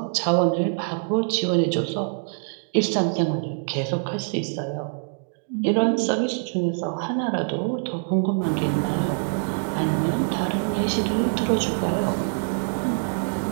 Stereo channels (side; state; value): left; silent; 62 dB below the other